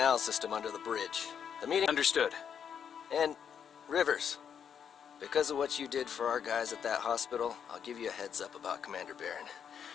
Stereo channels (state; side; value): quieter; right; 7.8 dB